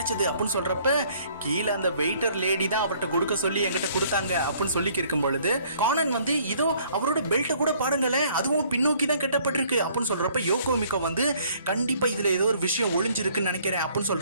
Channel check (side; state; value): both; inverted; correlation -0.60